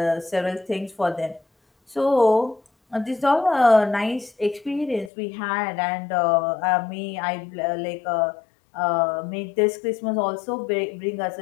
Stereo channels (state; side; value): drops out; right; at 5.1 s